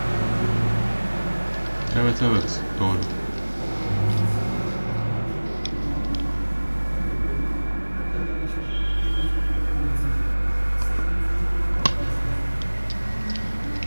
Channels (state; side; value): inverted; both; correlation -1.00